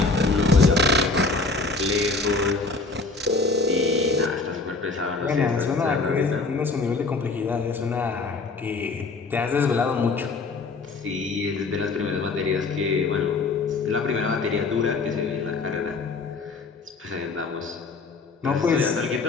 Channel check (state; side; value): quieter; right; 3.9 dB